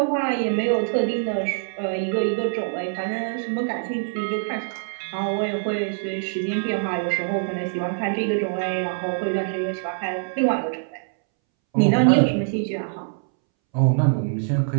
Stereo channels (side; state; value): left; silent; 63 dB below the other